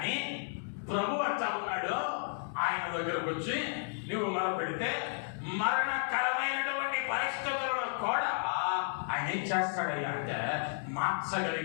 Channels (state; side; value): silent; right; digital silence